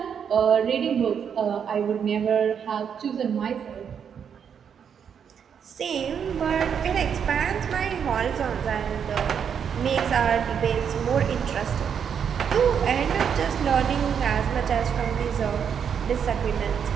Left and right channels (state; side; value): quieter; left; 7.6 dB